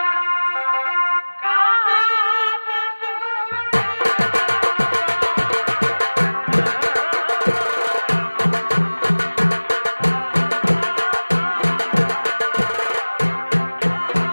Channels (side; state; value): both; inverted; correlation -1.00